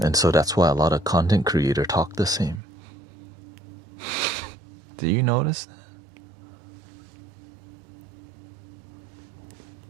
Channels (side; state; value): left; drops out; at 2.6 s